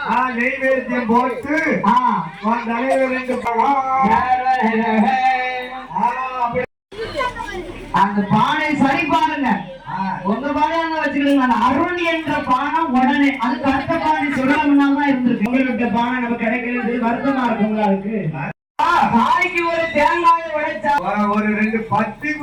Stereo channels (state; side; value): identical; both; correlation 1.00